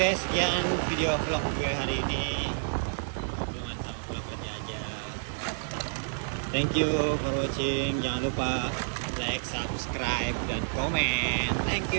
sekian video vlog gue hari ini. Hubungan sama vlog kerja aja. Thank you for watching. Jangan lupa like, subscribe, dan komen. Thank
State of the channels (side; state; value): left; silent; 55 dB below the other